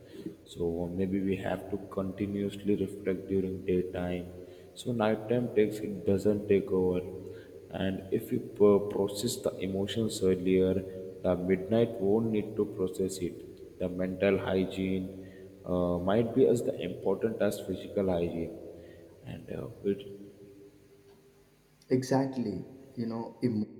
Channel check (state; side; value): identical; both; correlation 1.00